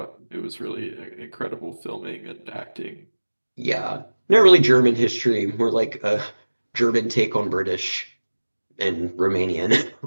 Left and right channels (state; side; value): inverted; both; correlation -1.00